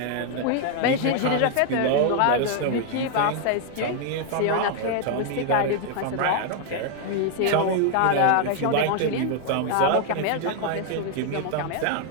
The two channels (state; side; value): different; both; correlation 0.00